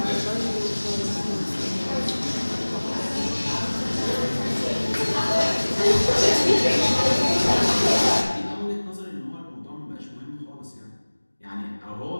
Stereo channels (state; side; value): inverted; both; correlation -1.00